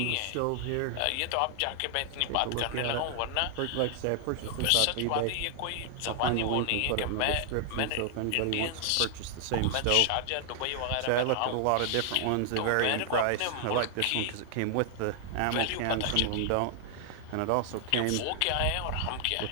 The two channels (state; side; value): different; both; correlation 0.00